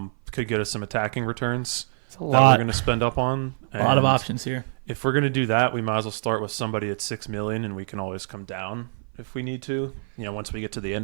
could get us some attacking returns that we're lot. going to spend up on. A lot of And options here. if we're going to do that, we might as well start with somebody at 6 million, and we can always come down if we need to. Once we get to the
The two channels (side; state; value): left; silent; 56 dB below the other